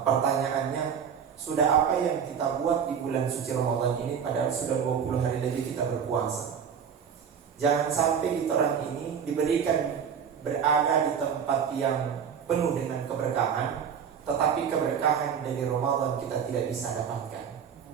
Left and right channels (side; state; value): left; quieter; 7.4 dB